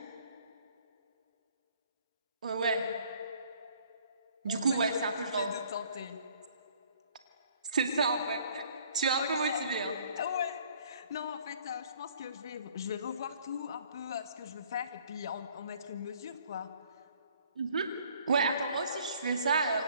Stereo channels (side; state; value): both; inverted; correlation -0.59